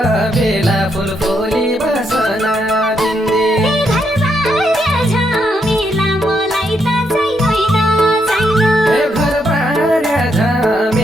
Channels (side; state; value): both; normal; correlation 0.78